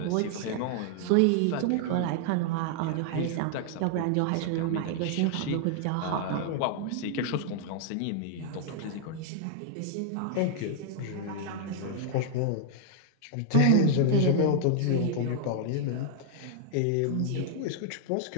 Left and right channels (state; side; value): different; both; correlation -0.01